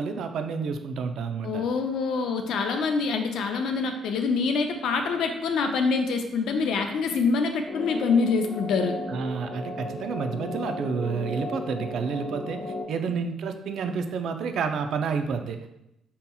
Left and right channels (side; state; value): both; normal; correlation 0.64